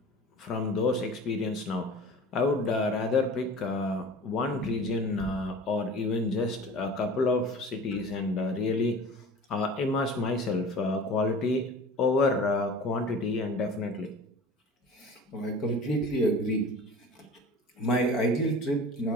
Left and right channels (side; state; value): both; normal; correlation 0.40